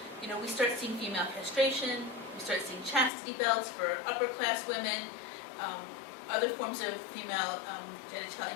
You know, we start seeing female castration, we start seeing chastity belts for upper class women, other forms of female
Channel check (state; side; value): drops out; right; at 3.1 s